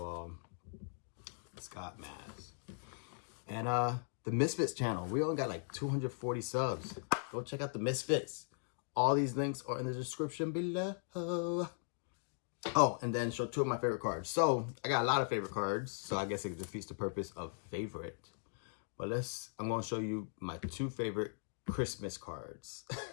Scott Maz. And the Misfits channel. We only got like 240 subs. Go check out the Misfits. All these links are in the description below. Oh, and then show 2 of my favorite cards. So I got a lot of favorite cards, so I guess it defeats the purpose of favorite. But I'm gonna show you my 2 favorite Christmas cards.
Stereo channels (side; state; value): right; silent; digital silence